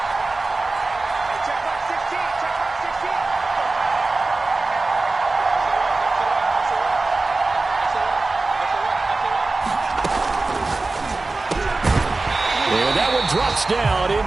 And that one drops down,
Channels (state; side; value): quieter; left; 3.4 dB